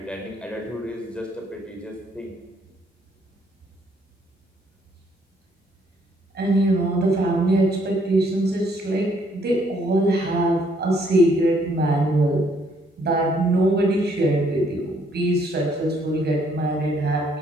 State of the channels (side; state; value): both; normal; correlation 0.67